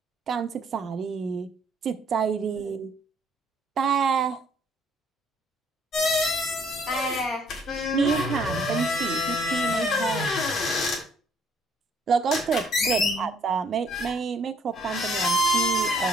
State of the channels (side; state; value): both; normal; correlation 0.63